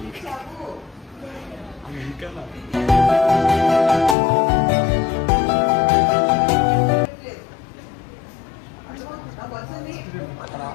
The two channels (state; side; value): drops out; right; at 4.2 s